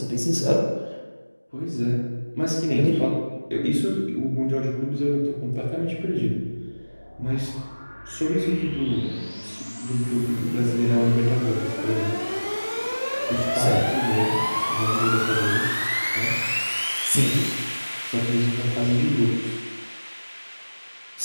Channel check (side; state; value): both; inverted; correlation -1.00